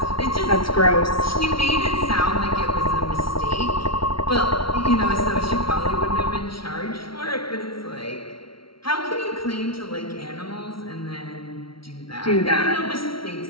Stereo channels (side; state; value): right; late; 0.74 ms